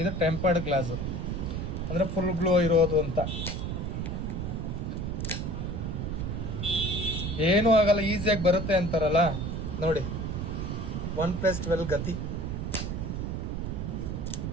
ಇದು ಟೆಂಪರ್ಡ್ ಗ್ಲಾಸು ಅಂದರೆ ಫುಲ್ ಗ್ಲೋ ಇರೋದು ಅಂತ. ಏನೂ ಆಗಲ್ಲ, ಈಸಿಯಾಗಿ ಬರುತ್ತೆ ಅಂತಾರಲ್ಲ ನೋಡಿ. 1+12 ಗತಿ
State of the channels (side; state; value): right; noise; rumble, 3 dB below the sound